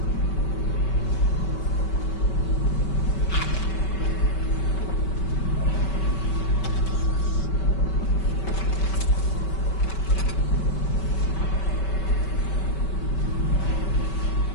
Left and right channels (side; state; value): right; late; 5.2 ms